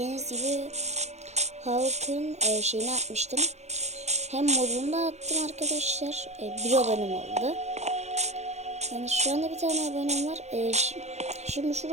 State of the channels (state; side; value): late; left; 0.32 ms